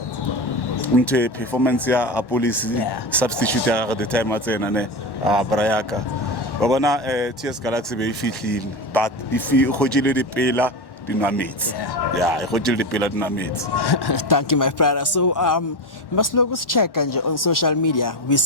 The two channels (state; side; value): late; right; 1.1 ms